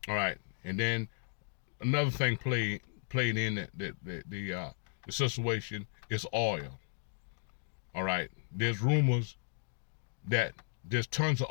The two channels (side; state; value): right; silent; digital silence